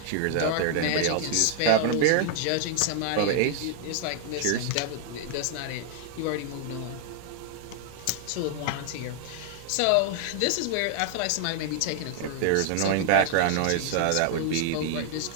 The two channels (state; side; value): different; both; correlation 0.00